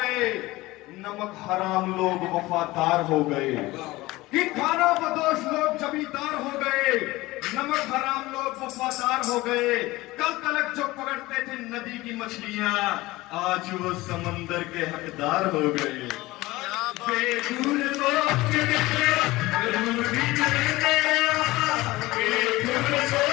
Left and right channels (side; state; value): right; quieter; 19.5 dB